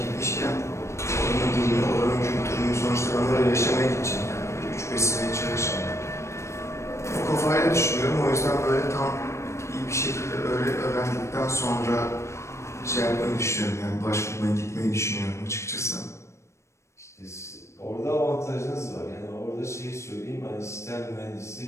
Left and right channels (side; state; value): right; late; 0.13 ms